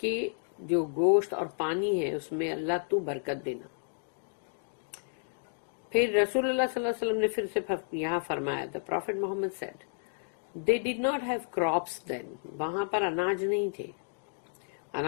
جو گوشت اور پانی ہے اس میں اللہ تو برکت دینا. پھر رسول اللہ صلی اللہ علیہ وسلم نے پھر سے یہاں فرمایا, the Prophet Muhammad said, they did not have crops then. وہاں پر اناج نہیں تھے,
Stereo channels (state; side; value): silent; right; digital silence